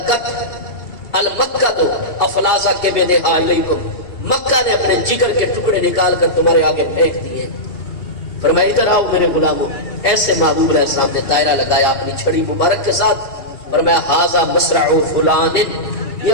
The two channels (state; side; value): late; right; 2.8 ms